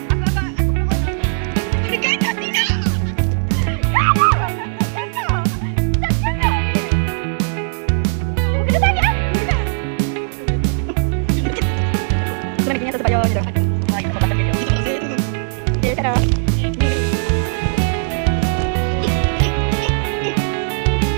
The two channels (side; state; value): left; silent; 59 dB below the other